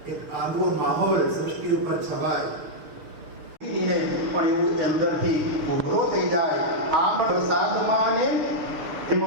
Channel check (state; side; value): late; left; 6.7 ms